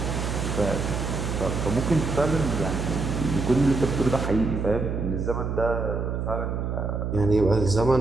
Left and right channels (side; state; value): right; noise; hum, 2 dB below the sound